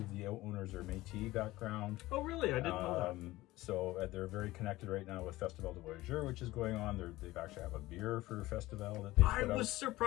the owners are Métis background. Oh, really? I didn't know that. So they're very connected right now with Festival de Voyageurs, which is going on. They've actually have a beer for Festival that they I put was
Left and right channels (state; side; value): quieter; right; 18.0 dB